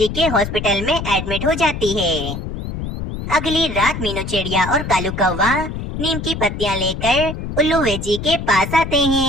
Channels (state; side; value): noise; left; rumble, 6 dB below the sound